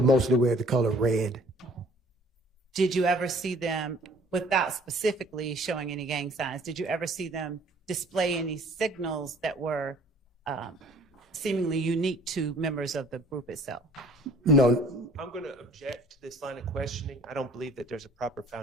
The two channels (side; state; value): both; normal; correlation 0.55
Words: wear the color red. Did you ever see them, without specifically showing any gang signs, did you ever see them display any signals that were seemingly unique to members of the group itself? No. I'm going to object to this line of questioning. I don't believe that there's a proper